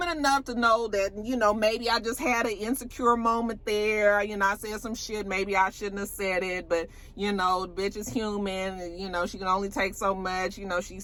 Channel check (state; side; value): identical; both; correlation 1.00